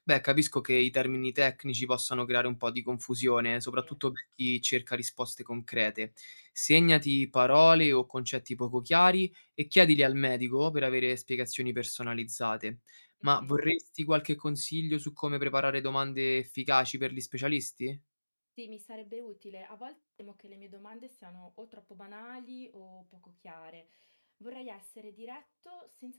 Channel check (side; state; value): both; inverted; correlation -1.00